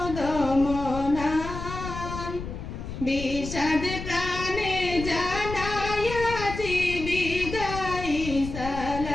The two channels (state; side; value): noise; left; rumble, 8 dB below the sound